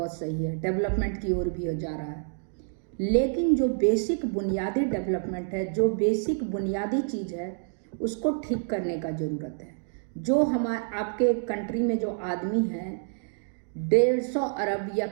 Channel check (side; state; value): left; silent; digital silence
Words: सही है, डेवलपमेंट की ओर भी जा रहा है। लेकिन जो बेसिक बुनियादी डेवलपमेंट है, जो बेसिक बुनियादी चीज़ है, उसको ठीक करने का ज़रूरत है। जो हमारे आपके कंट्री में जो आदमी है 150 अरब या